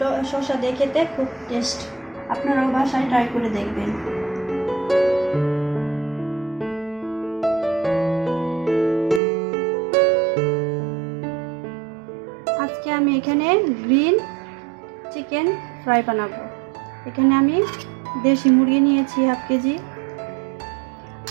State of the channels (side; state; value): left; drops out; at 9.2 s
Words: শসা দিয়ে খেতে খুব টেস্ট। আপনারাও বাসায় ট্রাই করে দেখবেন। আজকে আমি এখানে গ্রিন চিকেন ফ্রাই বানাবো। এখানে আমি দেশি মুরগি নিয়েছি হাফ কেজি,